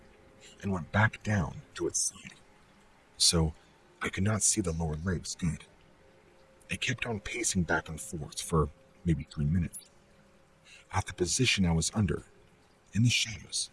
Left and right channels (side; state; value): both; identical; correlation 1.00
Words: and went back down to its side, so I could not see the lower legs good. It kept on pacing back and forth for maybe 3 minutes. At the position I was under, in the shadows,